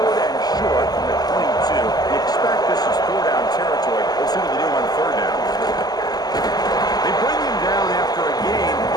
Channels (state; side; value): late; right; 0.19 ms